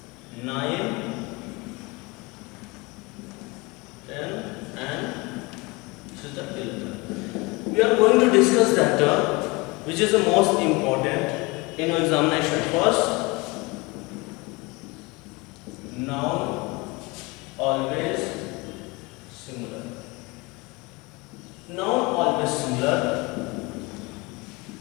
9, 10 and this is the 11th. We are going to discuss that which is the most important in your examination. First, noun always singular. Noun always singular.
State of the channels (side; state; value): right; quieter; 25.1 dB